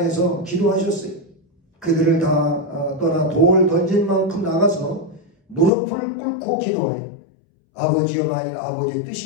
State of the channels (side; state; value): right; drops out; at 5.7 s